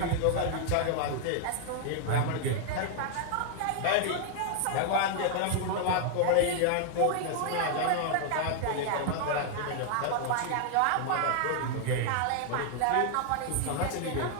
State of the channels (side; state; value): both; different; correlation 0.00